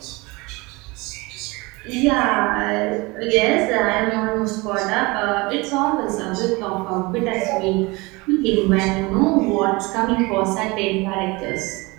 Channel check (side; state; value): left; quieter; 24.4 dB